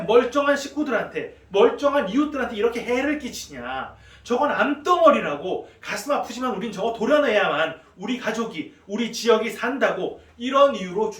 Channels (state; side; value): identical; both; correlation 1.00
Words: 식구들한테 멀쩡한 이웃들한테 이렇게 해를 끼치냐. 저건 암덩어리라고 가슴 아프지만 우린 저거 도려내야만 우리 가족이 우리 지역이 산다고 이런 이유로